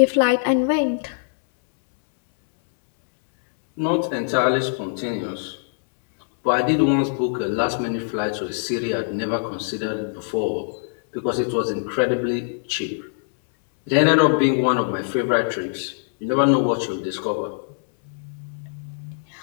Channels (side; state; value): right; silent; 64 dB below the other